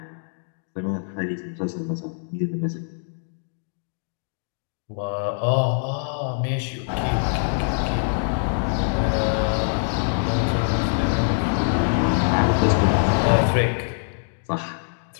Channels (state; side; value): silent; right; digital silence